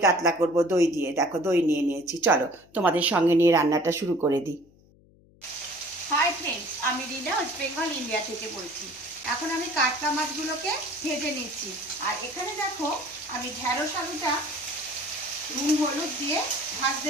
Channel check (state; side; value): noise; left; hum, 28 dB below the sound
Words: কাতলা করব দই দিয়ে। দেখো দই নিয়ে নিয়েছি। চলো তোমাদের সঙ্গে নিয়ে রান্নাটা শুরু করে দিই। হাই ফ্রেন্ডস, আমি রিনা, ওয়েস্ট বেঙ্গল ইন্ডিয়া থেকে বলছি। এখন আমি কাতলা মাছগুলোকে ভেজে নিচ্ছি। আর এখানে দেখো আমি ঢেঁড়স আলুটা নুন হলুদ দিয়ে ভাজতে